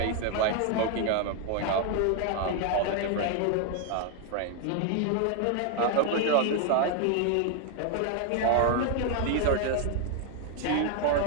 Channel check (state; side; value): different; both; correlation 0.00